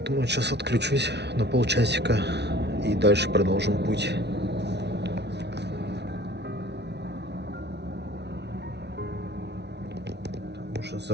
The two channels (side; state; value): left; late; 0.50 ms